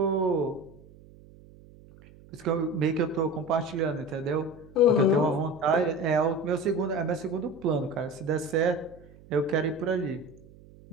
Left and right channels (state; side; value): noise; right; hum, 23 dB below the sound